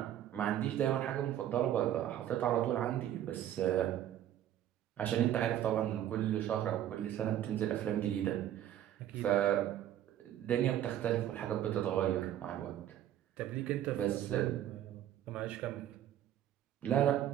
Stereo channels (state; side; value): quieter; left; 11.6 dB